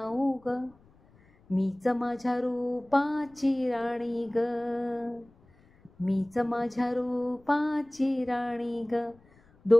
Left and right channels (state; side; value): noise; left; rumble, 30 dB below the sound